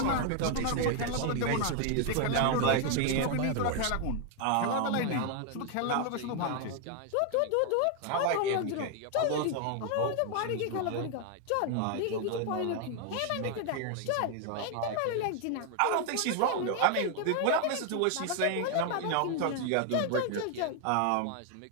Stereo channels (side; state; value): both; different; correlation 0.01